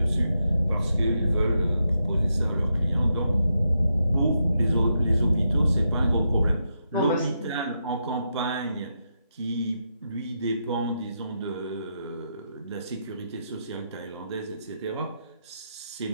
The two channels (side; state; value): both; inverted; correlation -0.83